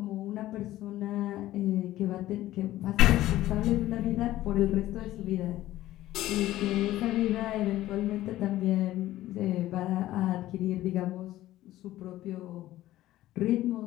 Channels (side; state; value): right; quieter; 15.0 dB